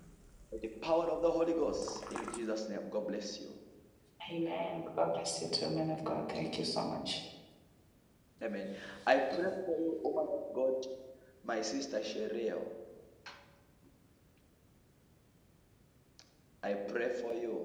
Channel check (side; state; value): both; identical; correlation 1.00